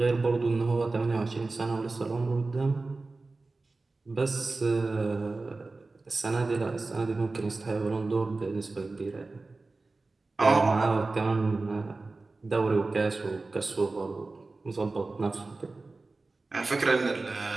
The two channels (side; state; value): left; quieter; 3.5 dB